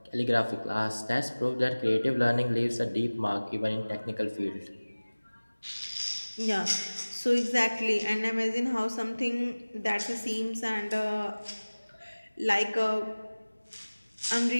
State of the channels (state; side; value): inverted; both; correlation -1.00